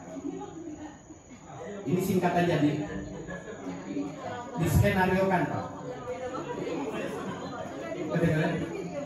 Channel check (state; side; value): identical; both; correlation 1.00